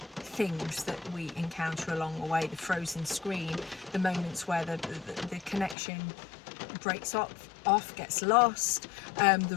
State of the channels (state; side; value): drops out; right; at 5.8 s